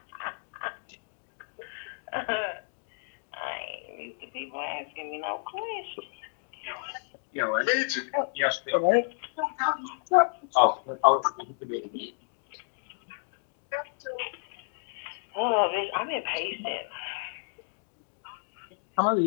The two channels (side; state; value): right; silent; digital silence